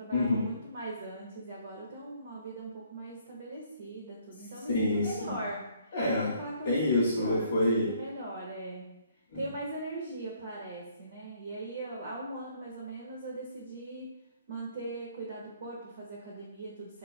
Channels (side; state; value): both; inverted; correlation -0.64